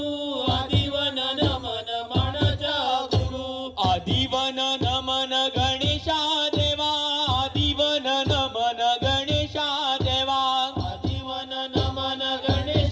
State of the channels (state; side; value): identical; both; correlation 1.00